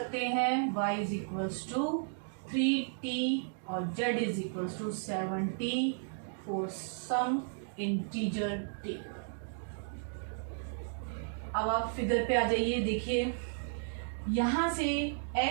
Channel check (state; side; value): silent; left; digital silence